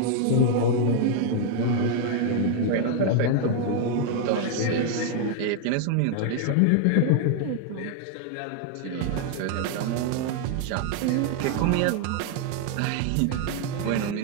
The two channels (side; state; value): both; different; correlation 0.00